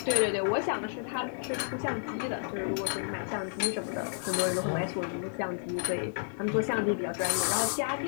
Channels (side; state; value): right; silent; digital silence